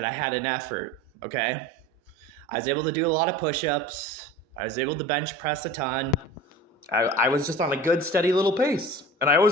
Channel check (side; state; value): both; normal; correlation 0.37